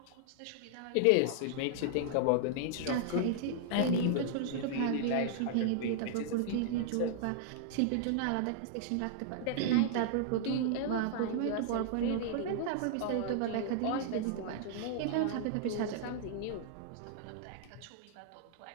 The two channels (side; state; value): both; different; correlation -0.01